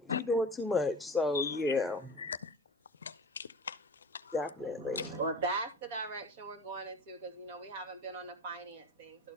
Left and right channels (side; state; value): both; normal; correlation 0.36